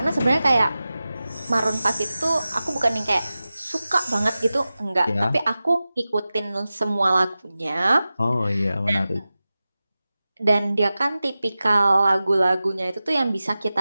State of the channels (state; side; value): inverted; both; correlation -0.95